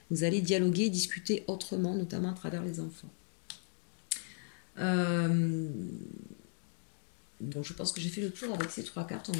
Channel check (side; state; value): right; silent; 54 dB below the other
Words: dialoguer, discuter autrement, notamment à travers les enfants. Euh, Bon, je pense que j'ai fait le tour avec ces 3 cartes, on